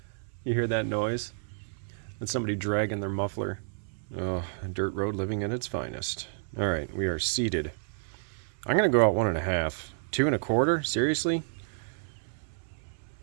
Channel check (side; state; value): left; silent; 58 dB below the other